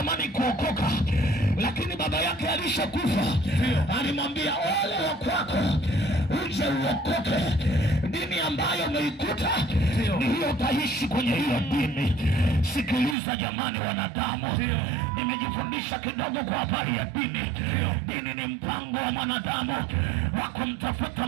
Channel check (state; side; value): drops out; left; at 13.2 s